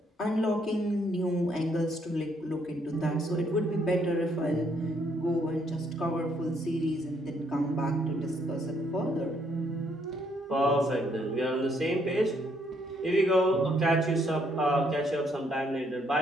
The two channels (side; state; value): both; normal; correlation 0.71